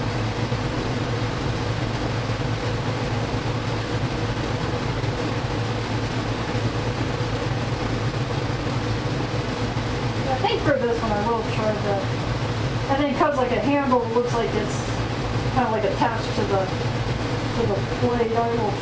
I think for this one I will try the, I think because like a handle looks like it's kind of like attached to the blade, I will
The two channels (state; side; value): identical; both; correlation 1.00